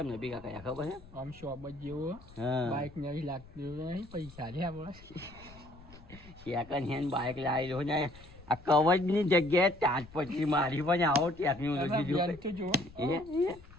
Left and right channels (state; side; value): noise; left; rumble, 20 dB below the sound